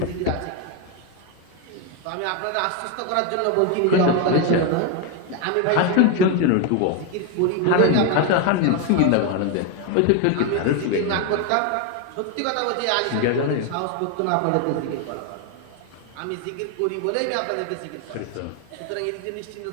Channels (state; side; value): different; both; correlation 0.01